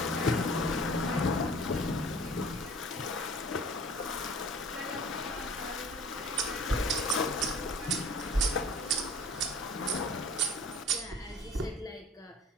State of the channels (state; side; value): normal; both; correlation 0.47